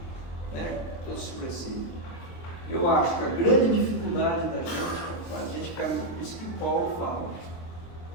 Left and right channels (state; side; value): late; right; 23 ms